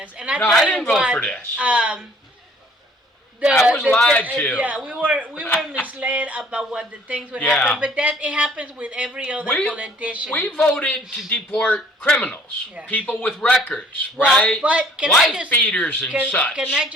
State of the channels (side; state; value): both; normal; correlation 0.57